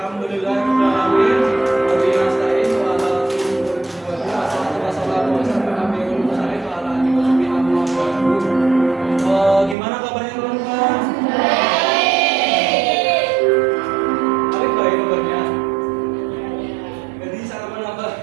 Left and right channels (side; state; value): left; drops out; at 9.8 s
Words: Wabillahi nasta'in wa ala gimana kabarnya teman-teman? Baik. Baik kabarnya. Jadi sarapan